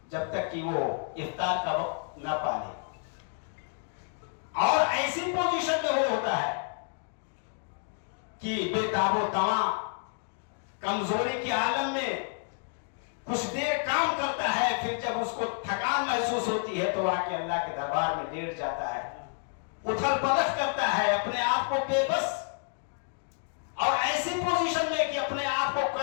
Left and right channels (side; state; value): right; silent; 58 dB below the other